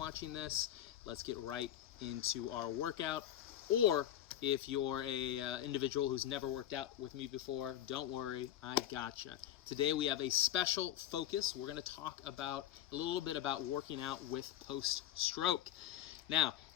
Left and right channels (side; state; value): right; quieter; 11.8 dB